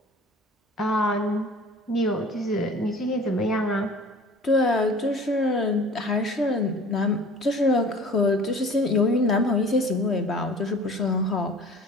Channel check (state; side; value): normal; both; correlation 0.45